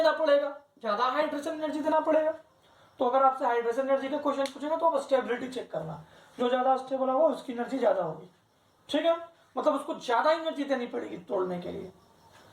पड़ेगा, ज्यादा हाइड्रेशन एनर्जी देना पड़ेगा। तो अगर आपसे हाइड्रेशन एनर्जी का क्वेश्चन पूछेगा तो आप स्टेबिलिटी चेक करना, जो ज्यादा स्टेबल होगा उसकी एनर्जी ज्यादा होगी, ठीक है, मतलब उसको ज्यादा एनर्जी देनी पड़ेगी तोड़ने के लिए।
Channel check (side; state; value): both; identical; correlation 1.00